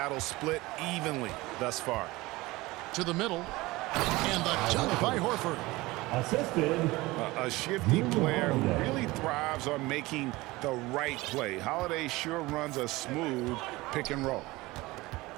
split evenly thus far. To the middle. And the dunk by Horford. Assisted. A shifty player who really thrives on making the right play. Holiday sure runs a smooth pick and roll.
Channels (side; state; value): left; quieter; 20.7 dB